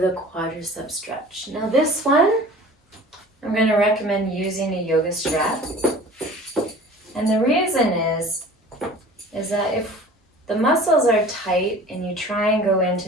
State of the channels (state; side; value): normal; both; correlation 0.44